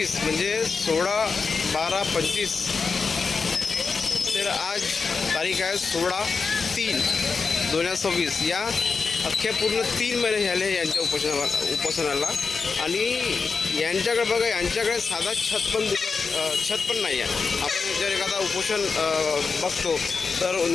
म्हणजे 16/12/25 तर आज तारीख आहे 16/3/2026. या अख्ख्या पूर्ण 3 महिने झाले यांच्या उपोषणाला आणि यांच्याकडे बघा, यांच्याकडे साधा छत पण नाही आहे. आपण जर एखादा उपोषण बघतो तर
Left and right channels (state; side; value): quieter; right; 4.9 dB